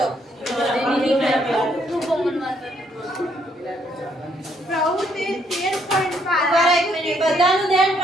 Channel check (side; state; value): both; normal; correlation 0.70